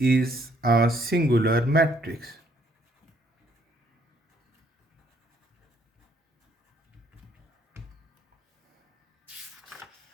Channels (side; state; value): both; normal; correlation 0.66